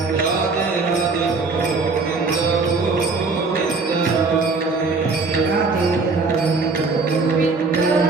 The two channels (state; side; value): quieter; left; 4.1 dB